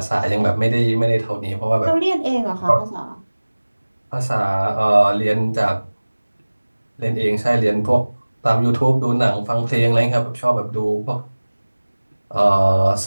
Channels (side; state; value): both; inverted; correlation -1.00